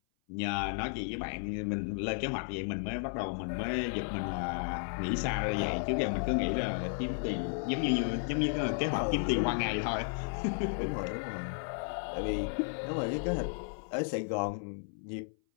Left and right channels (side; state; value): right; silent; 55 dB below the other